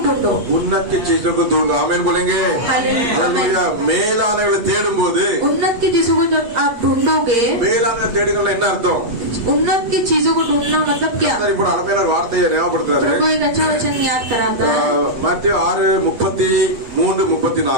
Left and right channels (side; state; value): left; late; 8.2 ms